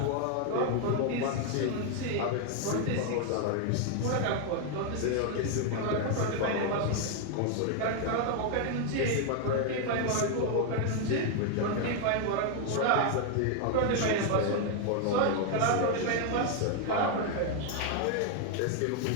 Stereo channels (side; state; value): both; different; correlation 0.01